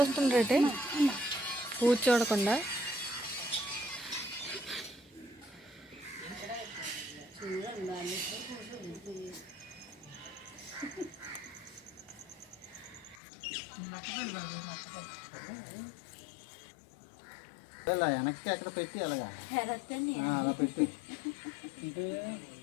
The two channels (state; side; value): drops out; right; at 13.2 s